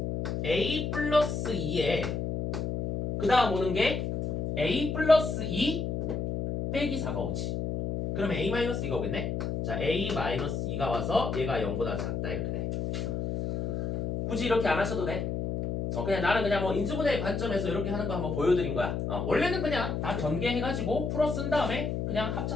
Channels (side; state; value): left; noise; hum, 1 dB below the sound